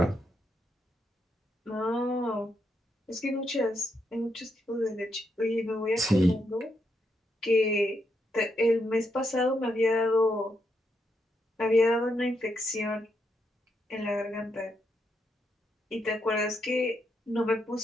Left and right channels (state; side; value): normal; both; correlation 0.80